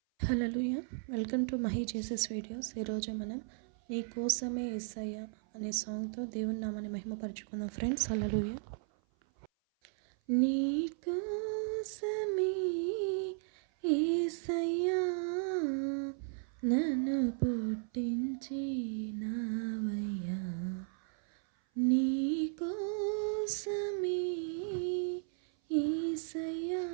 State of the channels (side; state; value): left; silent; 54 dB below the other